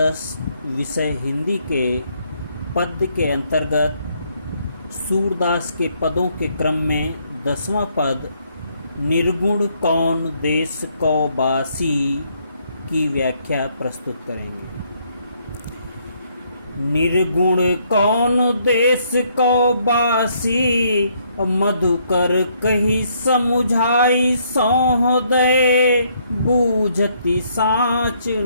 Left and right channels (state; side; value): inverted; both; correlation -0.70